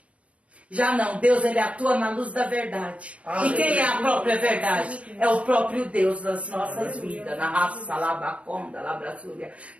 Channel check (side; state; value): left; late; 0.063 ms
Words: Já não, Deus, ele atua na luz da verdade. E quem é a própria verdade? É o próprio Deus das nossas vidas. Na raça, labaconda, labraçúria.